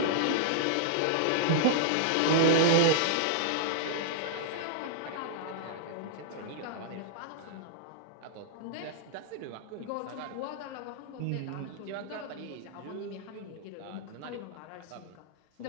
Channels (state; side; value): different; both; correlation -0.02